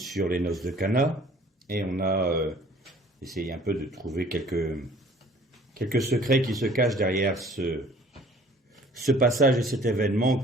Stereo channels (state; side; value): normal; both; correlation 0.53